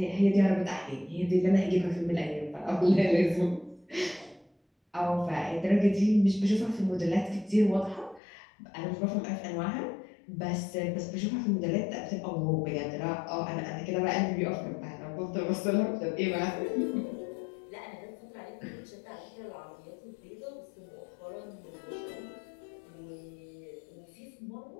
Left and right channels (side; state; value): right; drops out; at 8.2 s